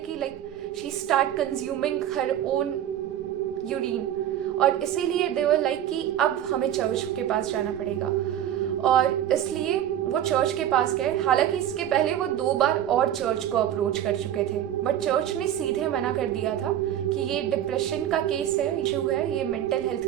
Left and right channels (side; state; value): left; quieter; 11.1 dB